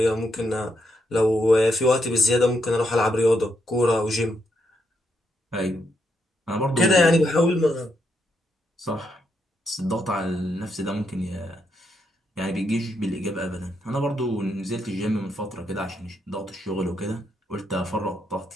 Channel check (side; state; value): both; normal; correlation 0.79